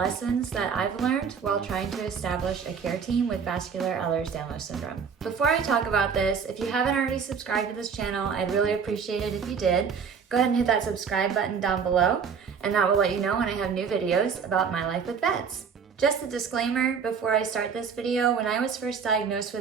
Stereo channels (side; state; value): left; quieter; 6.4 dB